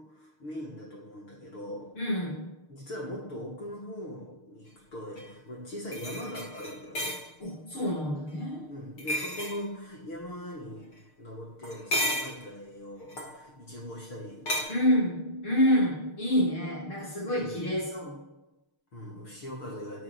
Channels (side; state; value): right; late; 6.6 ms